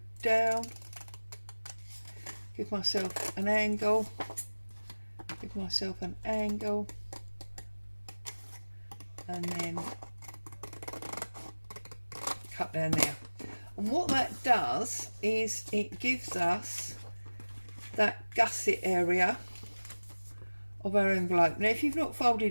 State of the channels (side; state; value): both; inverted; correlation -1.00